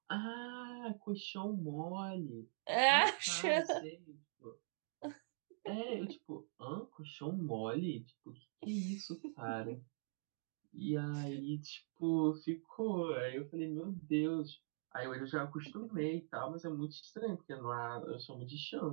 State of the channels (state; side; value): silent; left; digital silence